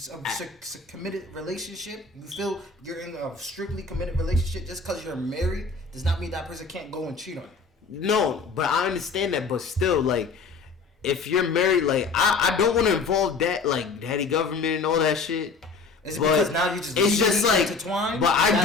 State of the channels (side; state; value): right; quieter; 4.5 dB